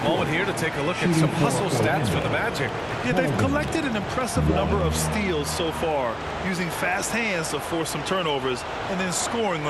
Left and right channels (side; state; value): both; identical; correlation 1.00